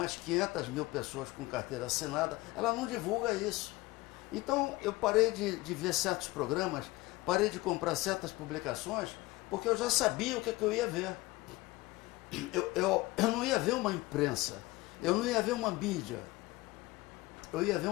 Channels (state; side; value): quieter; right; 20.5 dB